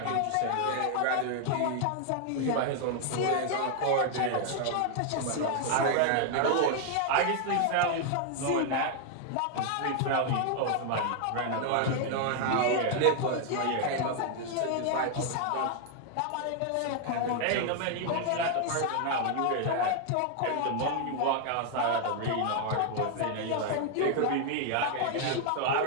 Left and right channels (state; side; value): different; both; correlation 0.00